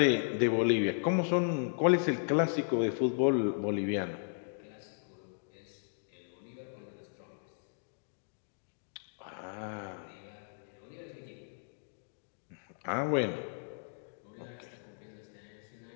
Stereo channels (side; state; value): right; silent; digital silence